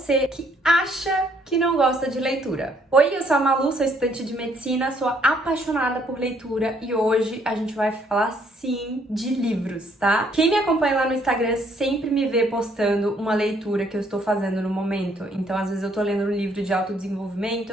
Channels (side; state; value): both; normal; correlation 0.67